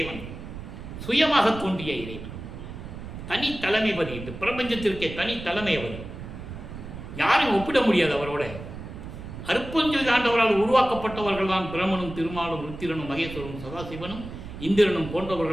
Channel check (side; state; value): right; noise; rumble, 11 dB below the sound